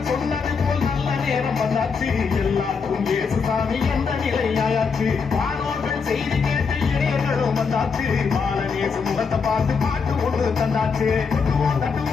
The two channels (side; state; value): right; quieter; 5.4 dB